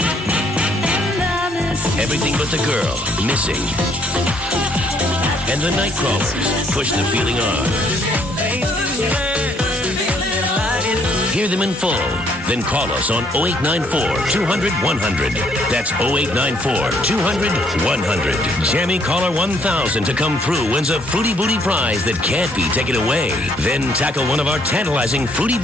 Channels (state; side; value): normal; both; correlation 0.67